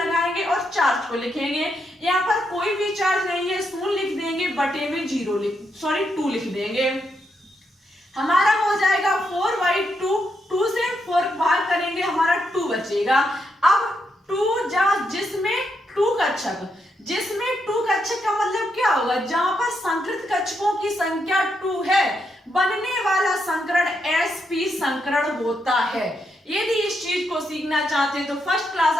और चार्ज को लिखेंगे। यहाँ पर कोई भी चार्ज नहीं है, 0 लिख देंगे, बटे में 2 लिख देंगे। हमारा हो जाएगा 4/2, 2 से 4 भाग करेंगे हमारा 2 बचेगा। अब 2 जिसमें 2 कक्षक, जिसमें 2 कक्षक का मतलब क्या होगा, जहां पर संकृत कक्षकों की संख्या 2 है बनने वाला संकरण sp संकरण होता है। यदि इस चीज को सीखना चाहते हैं तो फर्स्ट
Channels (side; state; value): both; normal; correlation 0.80